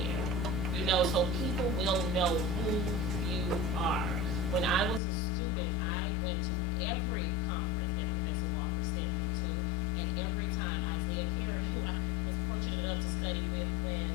you know, so people will know who you are. When I was a student, I went to every conference that Professor Walker sent me to, and every time Isaiah Carey, who I was fortunate enough to study with when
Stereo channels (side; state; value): right; drops out; at 5.0 s